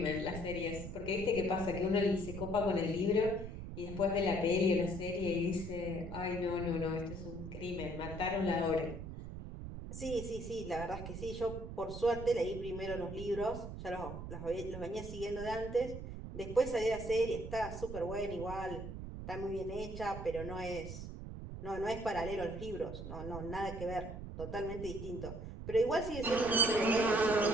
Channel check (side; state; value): right; noise; rumble, 8 dB below the sound